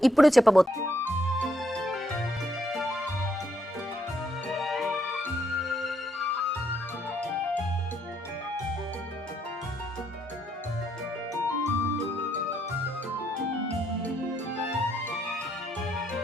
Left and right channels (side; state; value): both; normal; correlation 0.74